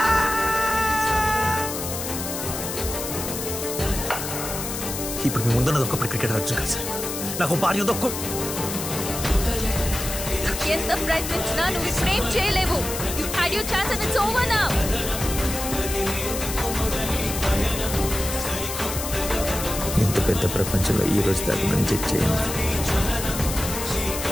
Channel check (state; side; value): noise; left; hiss, 6 dB below the sound